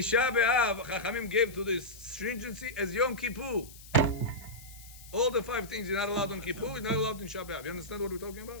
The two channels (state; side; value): noise; left; hiss, 19 dB below the sound